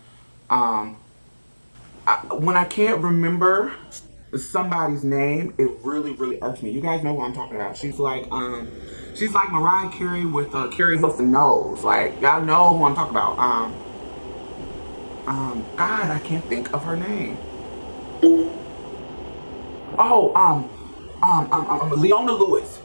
when I can't remember somebody's name, it really, really irks me. You guys know who I'm talking about. She's like Mariah Carey with Carrie Hilson nose. Like, y'all know who I'm talking about. God, I can't think of her name. Oh, Leona Lewis.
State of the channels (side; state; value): both; inverted; correlation -1.00